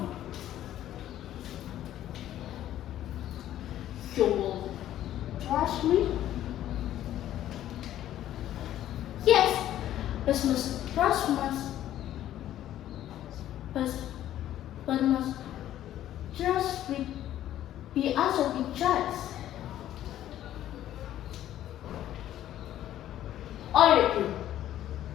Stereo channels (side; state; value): right; quieter; 12.4 dB